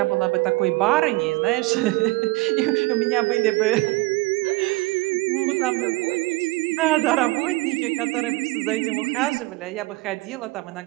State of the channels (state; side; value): quieter; left; 22.4 dB